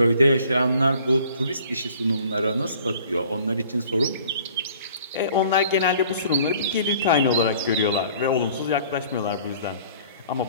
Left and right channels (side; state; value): both; inverted; correlation -0.52